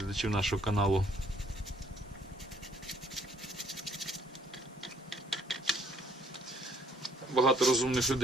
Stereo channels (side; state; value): both; normal; correlation 0.64